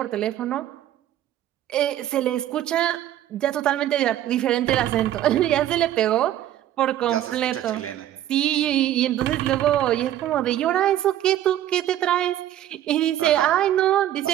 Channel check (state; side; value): quieter; left; 12.4 dB